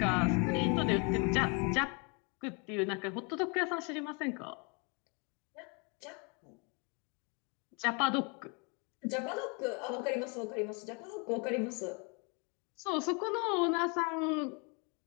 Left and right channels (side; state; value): right; quieter; 33.7 dB